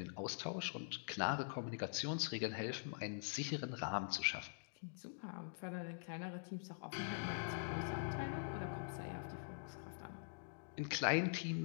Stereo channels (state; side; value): silent; right; digital silence